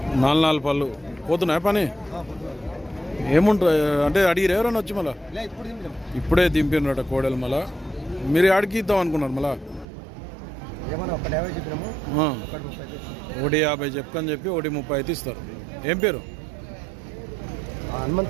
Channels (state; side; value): drops out; left; at 9.9 s